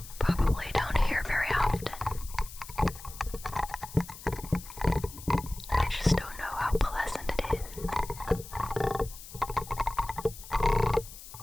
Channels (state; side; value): noise; left; hiss, 15 dB below the sound